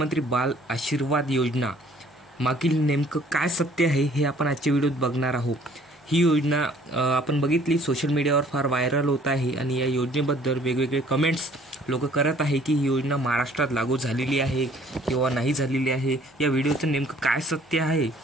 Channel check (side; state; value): both; normal; correlation 0.56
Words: बाल आशीर्वाद योजना मागील नेमकं काय सत्य आहे हे आपण आजच्या व्हिडिओत बघणार आहोत. ही योजना आपण बघितली, सोशल मीडियावर फार व्हायरल होत आहे आणि या योजनेबद्दल वेगवेगळे कमेंट्स लोक करत आहे की ही योजना महाराष्ट्रात लागू झालेली आहे किंवा नाही झालेली आहे. या व्हिडिओचं नेमकं काय सत्य आहे